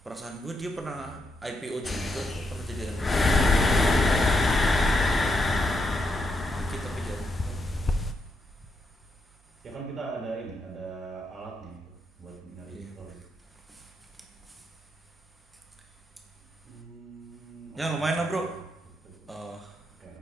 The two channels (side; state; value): both; normal; correlation 0.81